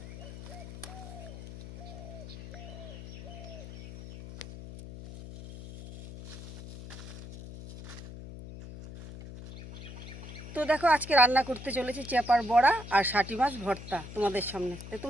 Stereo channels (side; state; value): left; noise; hum, 12 dB below the sound